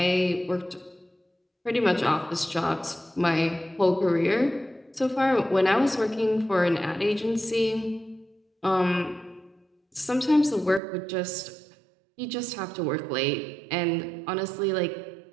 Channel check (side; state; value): left; drops out; at 10.8 s